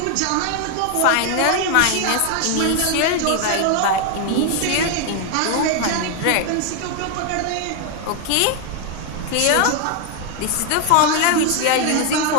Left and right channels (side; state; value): both; different; correlation 0.01